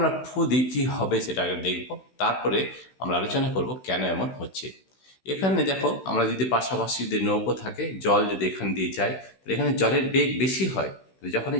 ফু দিই কী হবে সেটা আগে দেখব, তারপরে আমরা আলোচনা করব কেন এমন হচ্ছে। এখানে দেখো, আমরা যদি পাশাপাশি যদি নৌকো থাকে, জল যদি এখান দিয়ে যায়, তাহলে এখানে জলের বেগ বেশি হয়। তো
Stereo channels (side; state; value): right; late; 16 ms